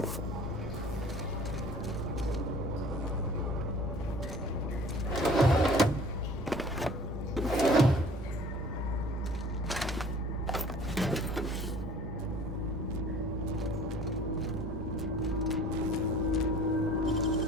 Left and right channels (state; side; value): normal; both; correlation 0.49